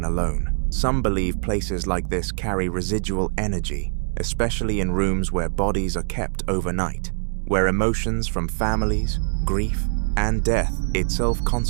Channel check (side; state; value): left; silent; digital silence